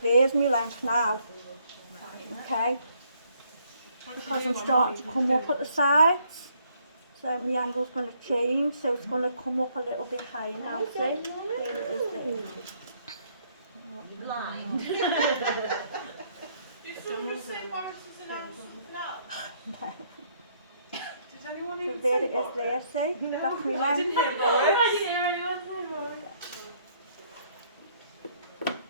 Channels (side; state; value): both; inverted; correlation -0.67